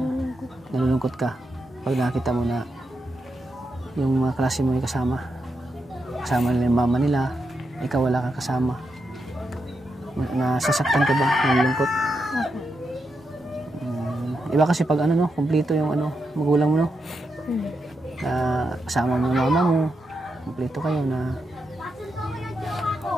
nalulungkot ka pag nakita mo na yung mga klase mo ay kasama nila yung mama nila, ikaw wala kang kasama? Nasasaktan ka ba? Nalulungkot? Iba kasi pag kumpleto yung magulang mo, no? Na kasama mo yung mama mo, kumpleto kayo na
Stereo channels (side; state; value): both; normal; correlation 0.85